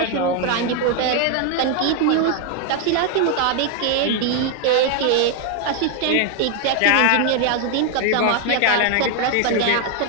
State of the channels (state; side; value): different; both; correlation 0.01